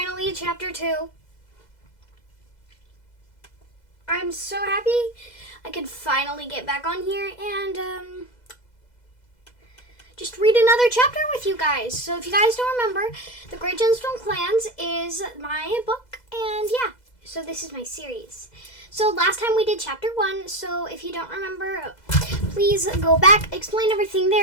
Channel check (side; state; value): right; late; 2.0 ms